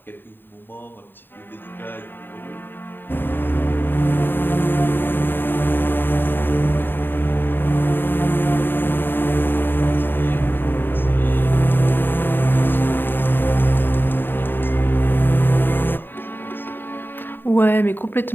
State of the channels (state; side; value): late; right; 0.096 ms